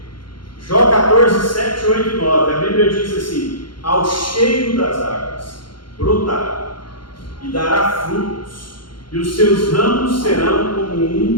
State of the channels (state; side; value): late; right; 0.72 ms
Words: Jó 14, 7, 8 e 9, a Bíblia diz assim: ao cheiro das águas brotará e dará frutos, e os seus ramos serão como